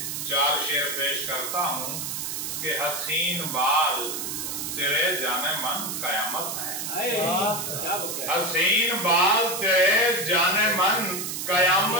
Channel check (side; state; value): right; noise; hiss, 4 dB below the sound